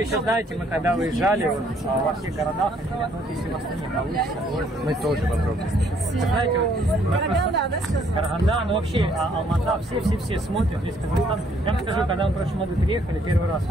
знаете, мы когда выезжали вот, во всех городах, ну, если вас не получится, мы тоже попробуем. Знаете, вот, Караганда, да, сказал? Караганда, ну вообще Алмата, все смотрят, весь Казахстан. Я вам скажу, когда мы в прошлом году приехали, первый раз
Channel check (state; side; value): normal; both; correlation 0.66